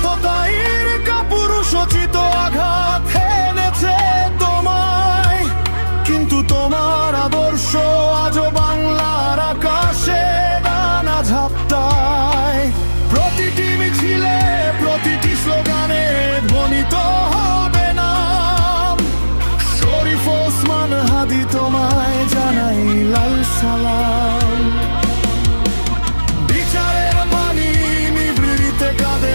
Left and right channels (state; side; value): inverted; both; correlation -1.00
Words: কাপুরুষোচিত আঘাত এনেছে তোমায়, কিন্তু তোমার আদর্শ আজও বাংলার আকাশে দানা ঝাপটায়। প্রতিটি মিছিলে প্রতিটি স্লোগানে ধ্বনিত হবে নাম। শরীফ ওসমান হাদি তোমায় জানাই লাল সালাম। বিচারের পানি নিভৃতে কাঁদে